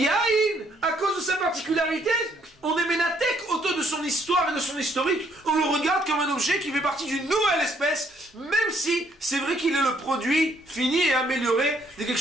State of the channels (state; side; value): normal; both; correlation 0.68